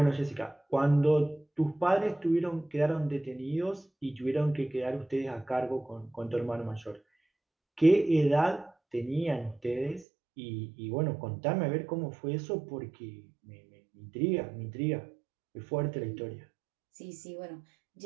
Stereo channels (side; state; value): left; drops out; at 10.1 s